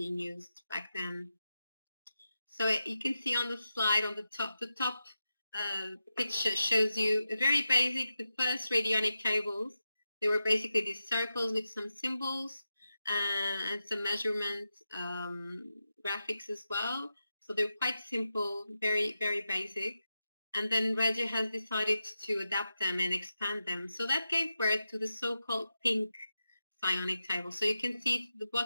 used back then. So you can see on the slide on the top picture shows you a very basic, the first radionic tables. They were basically these circles with some symbols and some measurement graphics as well. So they're quite simple, very, very basic. And then Régia has decided to adapt them and expand them. So that gave birth to the so-called pink psionic table. So you can see the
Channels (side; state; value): both; inverted; correlation -0.90